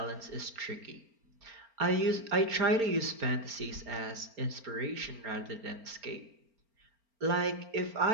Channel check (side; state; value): left; late; 4.4 ms